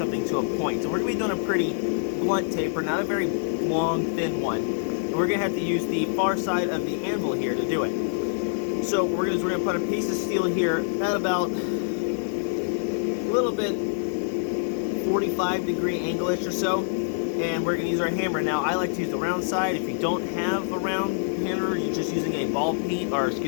to a point. So we're going to be doing a pretty blunt taper, not a very long, thin one. And we're going to have to use the far side of the anvil here to do it. So what we're going to do is we're going to put a piece of steel here at about a little bit 45-degree angle-ish or so. And we're going to use our hammer. Now, I like to use the round side. If you don't have a round hammer, you're just using a ball peen, or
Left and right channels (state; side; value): silent; right; digital silence